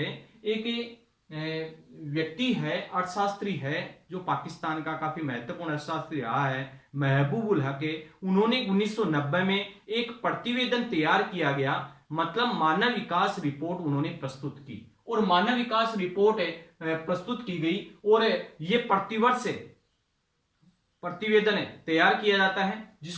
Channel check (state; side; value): identical; both; correlation 1.00